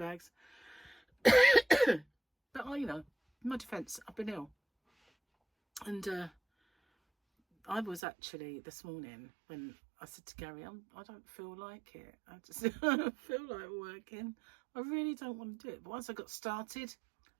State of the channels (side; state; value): left; drops out; at 8.0 s